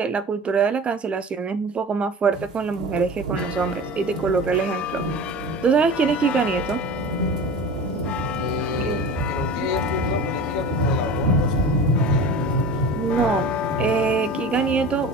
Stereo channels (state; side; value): normal; both; correlation 0.34